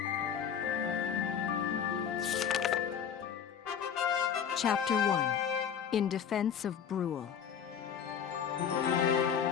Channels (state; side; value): quieter; right; 8.0 dB